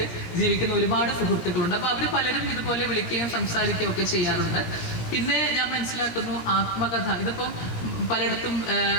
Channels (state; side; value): late; right; 17 ms